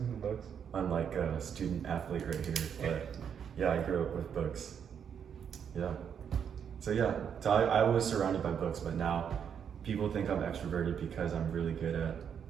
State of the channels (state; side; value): quieter; left; 7.8 dB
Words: Books. Unlike a student athlete right here, but yeah, I grew up with books. Yeah. So yeah, so I was surrounded by books, but now people think I'm extroverted because I'm really good at